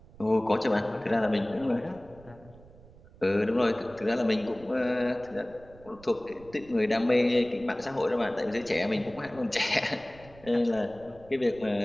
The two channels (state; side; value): noise; right; rumble, 23 dB below the sound